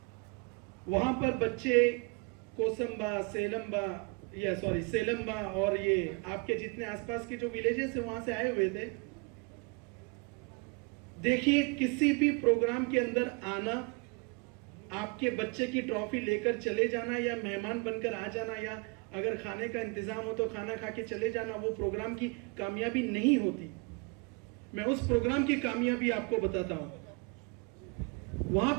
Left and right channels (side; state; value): left; quieter; 31.1 dB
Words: वहां पर बच्चे कोसंबा, सेलम्बा और ये आपके जितने आसपास के जो विलेजेस है वहां से आए हुए थे। देखिए, किसी भी प्रोग्राम के अंदर आना, आपके बच्चे की ट्रॉफी लेकर चले जाना या मेहमान बनकर आ जाना, या अगर खाने का इंतजाम हो तो खाना खा के चले जाना, वो प्रोग्राम की कामयाबी नहीं होती। मैं उस प्रोग्राम की कामयाबी आपको बताता हूं। वहां